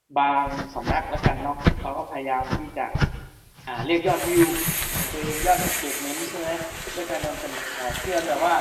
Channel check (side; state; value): both; identical; correlation 1.00